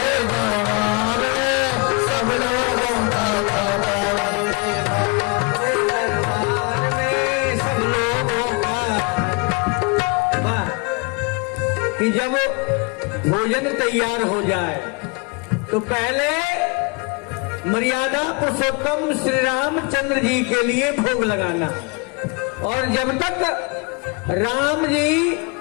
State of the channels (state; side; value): quieter; right; 31.0 dB